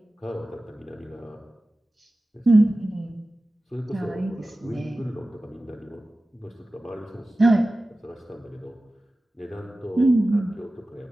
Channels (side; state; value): both; normal; correlation 0.96